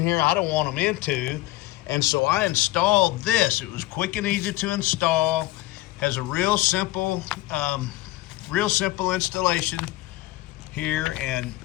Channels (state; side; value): quieter; right; 17.8 dB